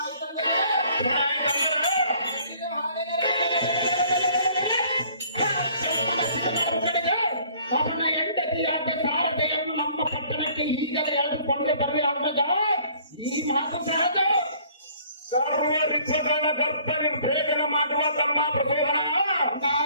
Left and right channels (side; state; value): both; inverted; correlation -0.57